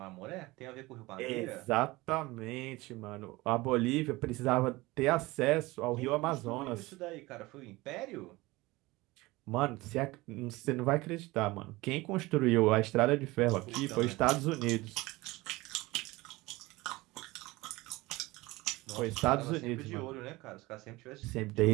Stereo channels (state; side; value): quieter; left; 21.0 dB